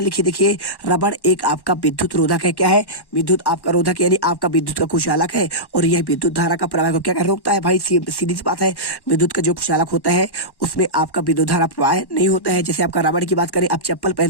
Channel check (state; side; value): late; right; 1.1 ms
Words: लिखिए, देखिए रबड़ एक आपका विद्युत रोधक है। क्या है, विद्युत आपका रोधक यानी आपका विद्युत का कुचालक है और यह विद्युत धारा का प्रवाह को क्या रोकता है। भाई सीधी सी बात है, विद्युत का जो कुचालक होता है उसमें आपका विद्युत धारा प्रवाह नहीं होता है। जैसे आपका रबड़ की बात करें, आप चप्पल